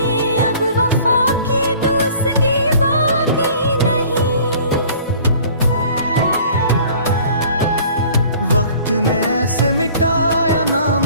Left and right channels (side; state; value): both; inverted; correlation -0.50